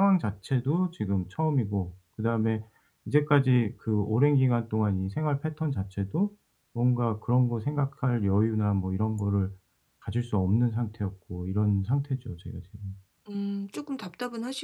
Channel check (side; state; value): both; identical; correlation 1.00